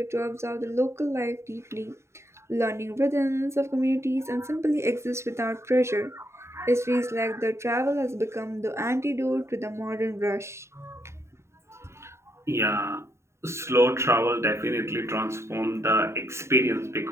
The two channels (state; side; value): late; left; 0.13 ms